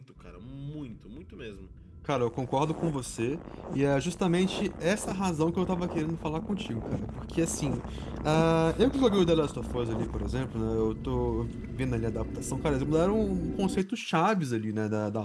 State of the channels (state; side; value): identical; both; correlation 1.00